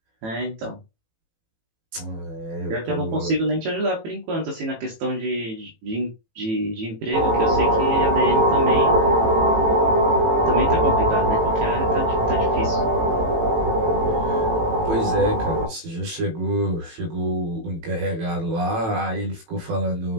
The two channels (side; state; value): left; late; 18 ms